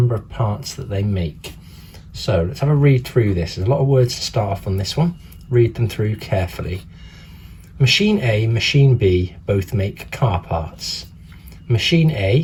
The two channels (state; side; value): identical; both; correlation 1.00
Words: of parts that they make. So let's have a read through this. There's a lot of words to start off on this one. Read them through carefully. Machine A and machine B both make car parts. Machine